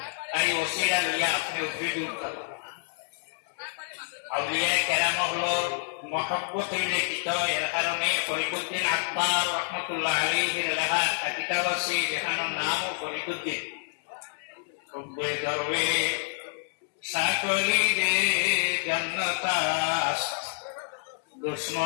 তাই ওসিরা লইয়া আপনি উপরে দিয়ে উঠতাম আউলিয়া কেরাম হলো মহব্বত হইলে কিত এর কারণে ফরিদুদ্দিন আকবর রহমতুল্লাহ আলাইহির লেখা কিতাব আছে যেখানের নাম ফরিদুদ্দিন রব্বে দরবে সাকলি দে জান্নাতাস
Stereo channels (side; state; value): right; silent; digital silence